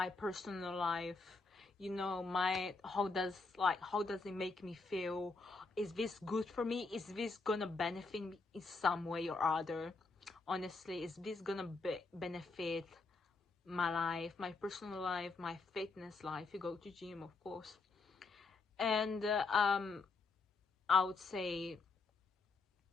personal life, you know, how does it make me feel? Is this good for me? Is this gonna benefit me in some way or other? Honestly, is this gonna benefit my life, my personal life, my fitness life? You go to gym, of course. And I would say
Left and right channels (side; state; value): right; quieter; 3.9 dB